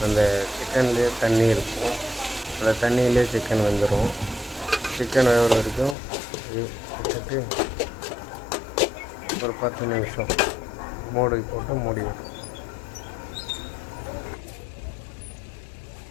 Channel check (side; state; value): right; drops out; at 6.0 s